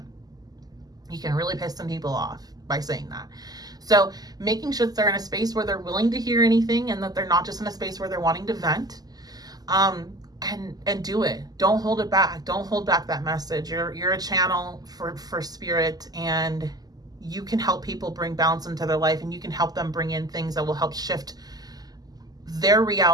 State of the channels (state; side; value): late; left; 0.19 ms